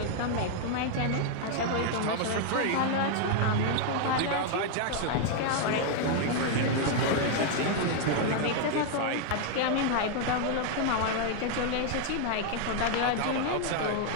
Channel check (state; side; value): different; both; correlation 0.00